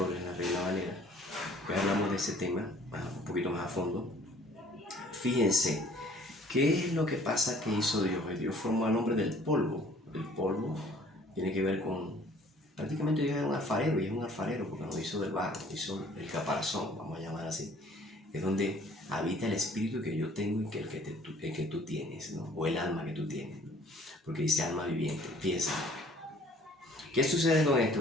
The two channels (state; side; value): normal; both; correlation 0.55